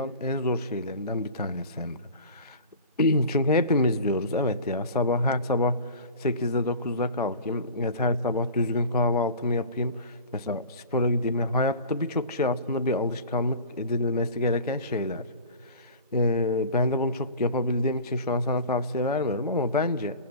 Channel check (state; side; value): inverted; both; correlation -0.38